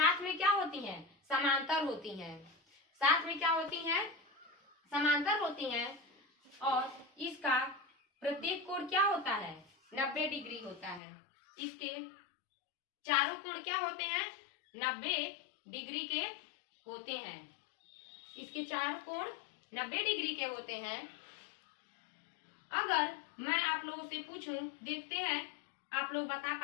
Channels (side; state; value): right; drops out; at 11.0 s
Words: में क्या होती हैं, समांतर होती हैं। साथ में क्या होती हैं, समांतर होती हैं। और इसका प्रत्येक कोण क्या होता है, 90 डिग्री होता है। इसके चारों कोण क्या होते हैं, 90 डिग्री के होते हैं। इसके चारों कोण 90 डिग्री के होते हैं। अगर मैं आप लोगों से पूछूं, देखते हैं आप लोग बता